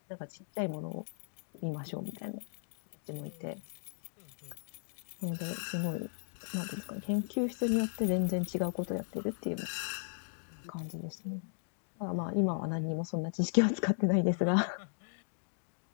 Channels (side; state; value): right; silent; digital silence